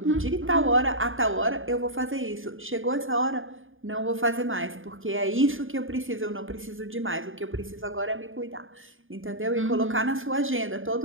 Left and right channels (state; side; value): late; left; 0.59 ms